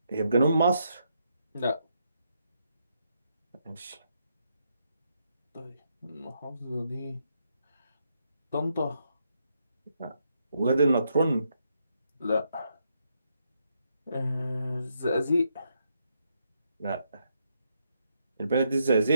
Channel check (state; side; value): inverted; both; correlation -0.78